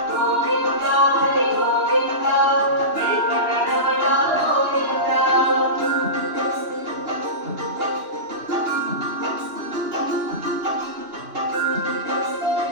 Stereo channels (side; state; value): left; late; 2.9 ms